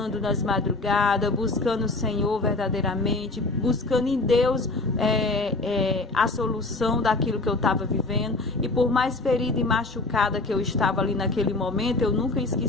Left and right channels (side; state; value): right; quieter; 3.2 dB